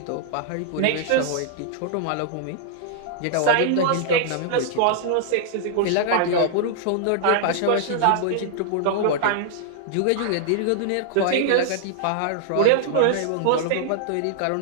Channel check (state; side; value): different; both; correlation -0.01